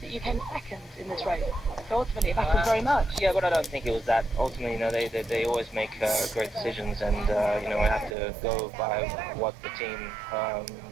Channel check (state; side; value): drops out; left; at 8.2 s